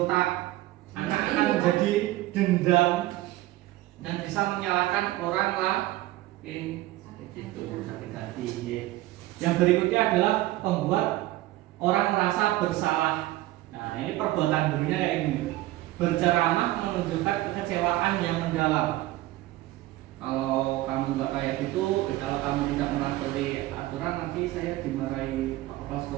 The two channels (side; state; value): left; quieter; 16.9 dB